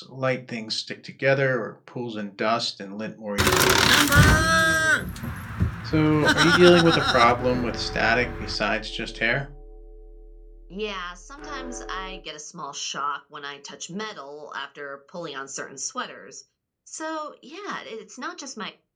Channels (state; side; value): identical; both; correlation 1.00